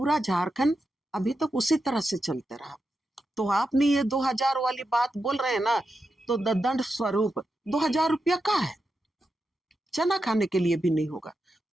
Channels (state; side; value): normal; both; correlation 0.88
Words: झारखंड अभी तक उसी तरह से चलते रहा। तो आपने ये 2000 वाली बात बोल रहे हैं ना, तो दंड स्वरूप 2000 रुपया का है, चना खाने के लिए भी नहीं होगा।